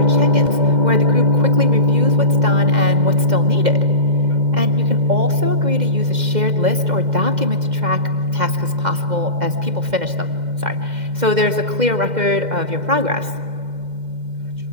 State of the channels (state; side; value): late; left; 2.1 ms